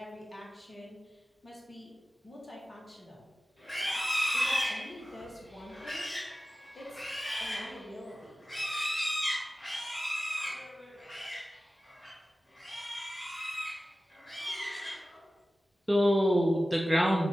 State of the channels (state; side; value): normal; both; correlation 0.96